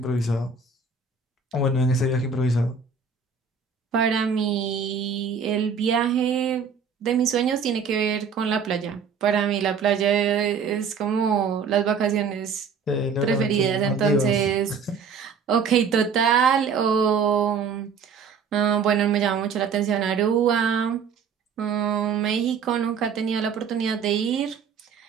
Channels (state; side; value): quieter; left; 5.9 dB